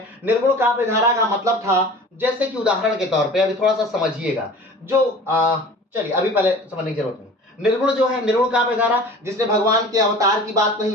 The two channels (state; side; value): normal; both; correlation 0.41